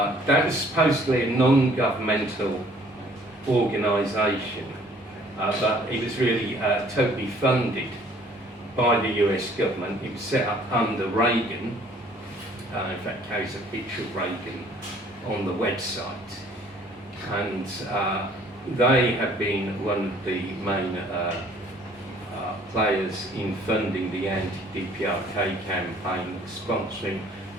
was supposedly a non-governmental organisation, but it was really totally funded by the US government. It was set up under Reagan. In fact, carries a picture of Reagan on the website. And they have been one of the main players in funding the anti-DPRK campaign, sponsoring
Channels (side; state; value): both; normal; correlation 0.57